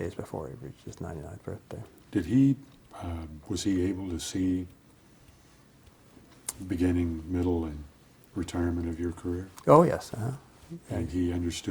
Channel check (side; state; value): both; identical; correlation 1.00